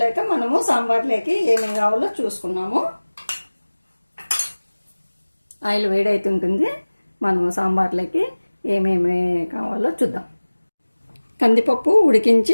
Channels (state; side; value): inverted; both; correlation -1.00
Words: మనము సాంబార్లోకి ఏమేమి కావాలో చూసుకున్నాము. ఆయిల్ వేడైతుంటుంది, మనము సాంబార్లోకి ఏమేమి కావాలో చూద్దాం. కందిపప్పు